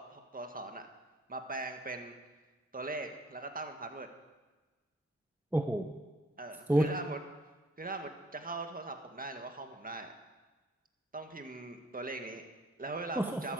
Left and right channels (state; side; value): normal; both; correlation 0.61